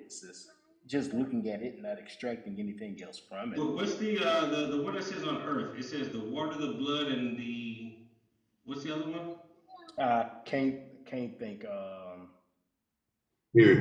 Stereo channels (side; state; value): both; identical; correlation 1.00